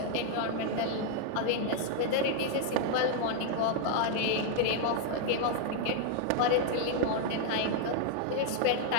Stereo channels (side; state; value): both; different; correlation 0.00